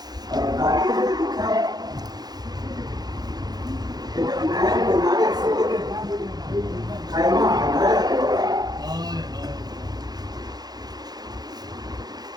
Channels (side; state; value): left; late; 0.19 ms